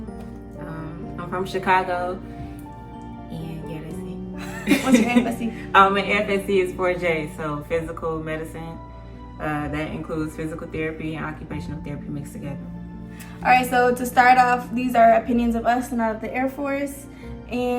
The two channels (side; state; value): both; identical; correlation 1.00